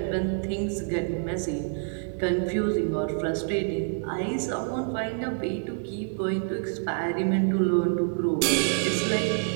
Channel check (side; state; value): left; silent; digital silence